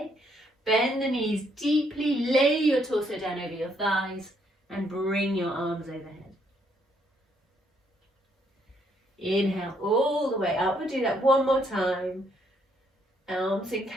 Bend the knees deeply, lay your torso down over your thighs and bring your arms overhead. Inhale all the way up. We'll do that one more time. Arms in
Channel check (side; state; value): both; normal; correlation 0.71